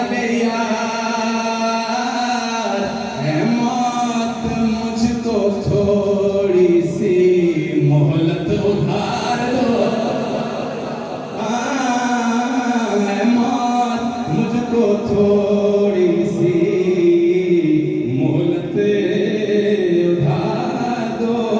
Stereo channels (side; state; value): both; identical; correlation 1.00